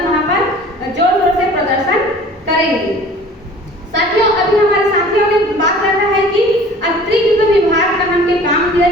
वहाँ पर जोर शोर से प्रदर्शन करेंगे। साथियों, अभी हमारे साथियों ने बात करना है कि अतिरिक्त विभाग का हमके काम दिया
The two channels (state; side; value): normal; both; correlation 0.47